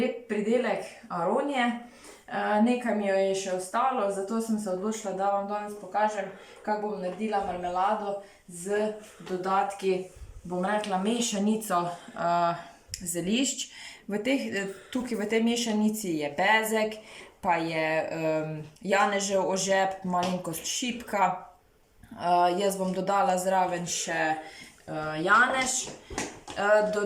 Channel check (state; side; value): identical; both; correlation 1.00